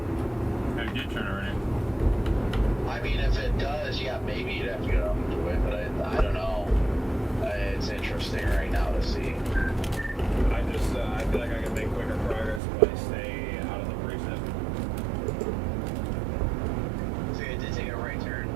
I did turn already. I mean, if it does, yeah, maybe you'd have to go down to it, but I don't know. It's interesting right now to see. I just, I feel like I can make quicker progress if I stay out of the precinct. So you did take a right turn.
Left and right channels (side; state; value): left; drops out; at 12.6 s